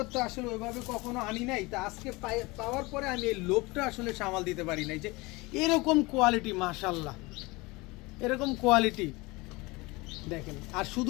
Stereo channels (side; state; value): right; quieter; 23.7 dB